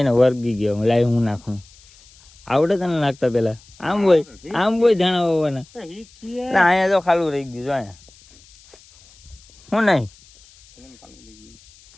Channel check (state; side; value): noise; left; hiss, 26 dB below the sound